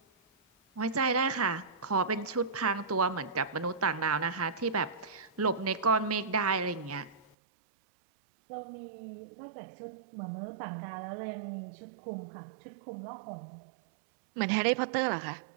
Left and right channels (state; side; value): drops out; left; at 7.4 s